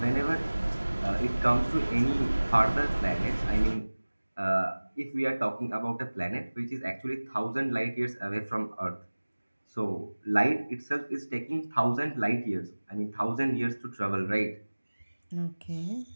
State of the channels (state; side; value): inverted; both; correlation -1.00